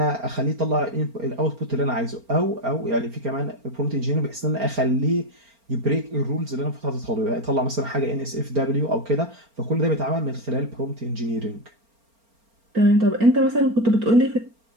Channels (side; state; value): left; late; 4.4 ms